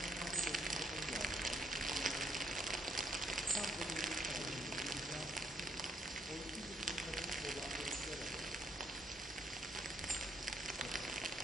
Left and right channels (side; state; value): both; normal; correlation 0.72